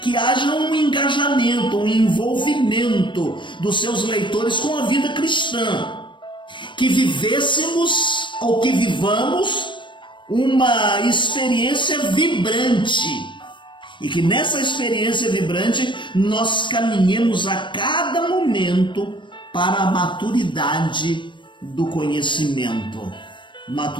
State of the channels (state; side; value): late; right; 0.23 ms